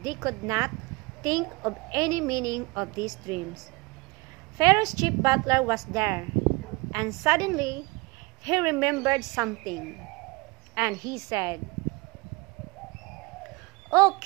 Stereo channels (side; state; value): left; quieter; 24.6 dB